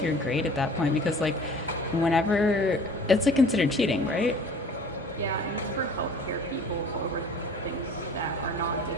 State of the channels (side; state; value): both; normal; correlation 0.47